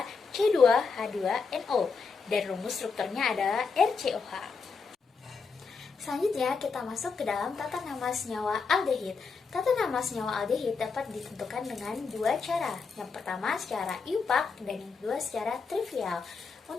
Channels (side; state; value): right; quieter; 5.0 dB